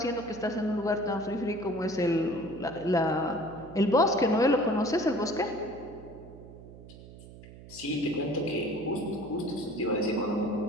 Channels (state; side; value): noise; right; hum, 17 dB below the sound